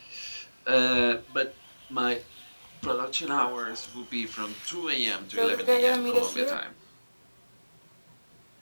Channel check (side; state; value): both; inverted; correlation -1.00